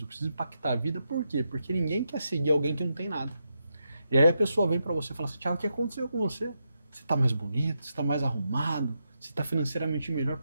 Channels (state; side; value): inverted; both; correlation -0.84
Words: preciso impactar a vida. Por quê? Porque ninguém quer seguir alguém que não tem nada. E aí a pessoa vem para você e fala assim, Thiago, o que aconteceu com você? Você está mais bonito, você está mais arrumado, você está financeiramente melhor,